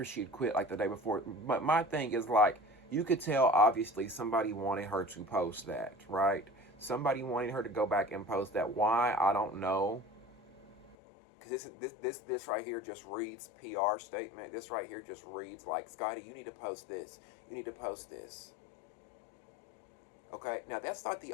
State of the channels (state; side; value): drops out; right; at 11.0 s